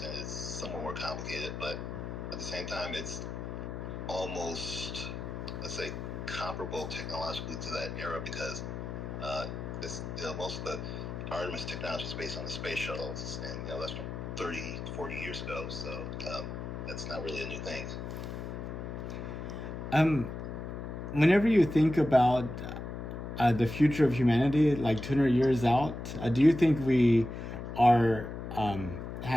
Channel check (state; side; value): noise; left; hum, 7 dB below the sound